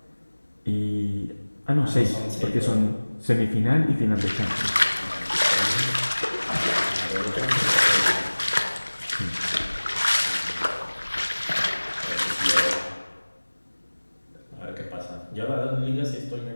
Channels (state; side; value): inverted; both; correlation -1.00